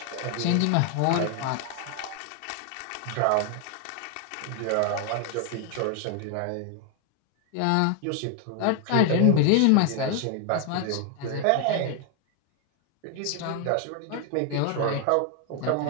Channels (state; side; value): different; both; correlation 0.00